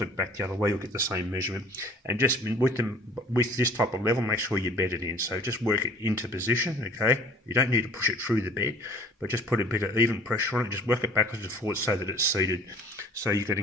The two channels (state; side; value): normal; both; correlation 0.50